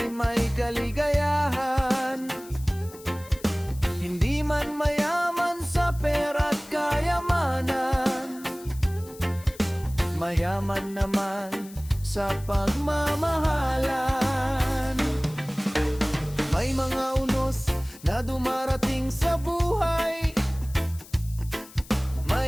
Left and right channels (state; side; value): noise; left; hiss, 20 dB below the sound